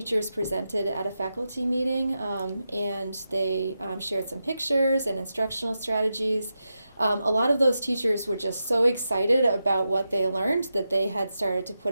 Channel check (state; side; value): inverted; both; correlation -0.89